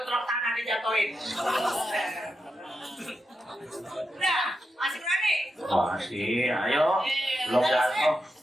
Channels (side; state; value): both; normal; correlation 0.87